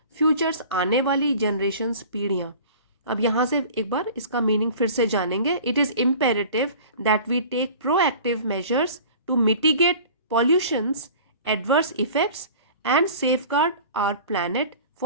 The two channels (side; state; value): both; inverted; correlation -0.42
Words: फ्यूचर्स आने वाली जनरेशंस पीढ़ियाँ। अब यहाँ से एक बार इसका मीनिंग फिर से जानेंगे। It is imperative that we take proactive measures to mitigate pollution's adverse effects and safeguard our planet